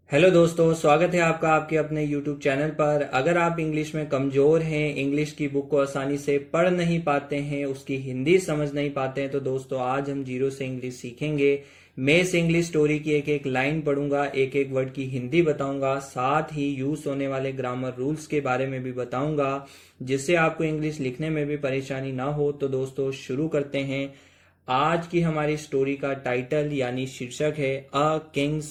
Hello दोस्तों, स्वागत है आपका आपके अपने यूट्यूब चैनल पर। अगर आप इंग्लिश में कमज़ोर हैं, इंग्लिश की बुक को आसानी से पढ़ नहीं पाते हैं, उसकी हिंदी समझ नहीं पाते हैं, तो दोस्तों आज हम जीरो से इंग्लिश सीखेंगे। मैं इस इंग्लिश स्टोरी की एक एक लाइन पढ़ूंगा, एक एक वर्ड की हिंदी बताऊंगा, साथ ही यूज होने वाले ग्रामर रूल्स के बारे में भी बताऊंगा, जिससे आपको इंग्लिश लिखने में भी परेशानी ना हो। तो दोस्तों शुरू करते हैं। आज की हमारी स्टोरी का टाइटल यानी शीर्षक है अ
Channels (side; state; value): both; identical; correlation 1.00